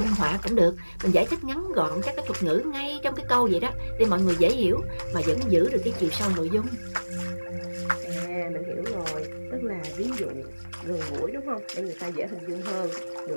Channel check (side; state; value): both; inverted; correlation -1.00